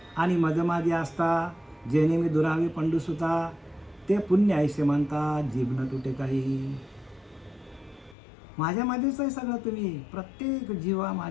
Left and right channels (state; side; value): drops out; right; at 8.2 s